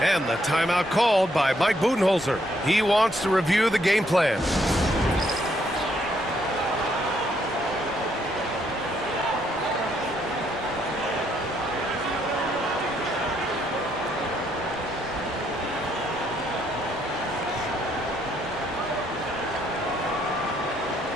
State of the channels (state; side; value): normal; both; correlation 0.72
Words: And the timeout called by Mike Budenholzer. He wants to review the game plan.